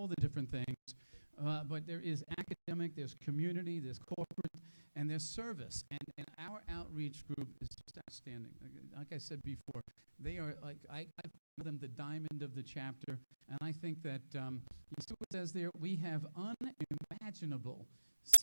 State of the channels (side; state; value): both; inverted; correlation -1.00